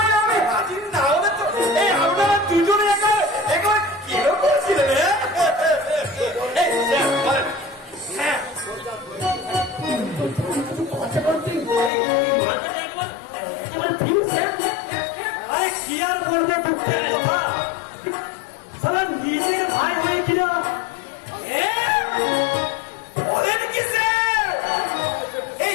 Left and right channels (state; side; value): drops out; right; at 11.9 s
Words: আমি হাজির না হলে তো এই আপনারা দুজনে একবার কিরকম ছিলেন? আরে কি আর বলবো দুঃখের কথা, সারা নিজের ভাই হয়ে কিনা বলেন কি স্যার, এই